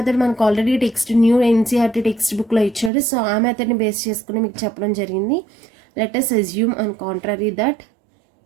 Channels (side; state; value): left; drops out; at 2.9 s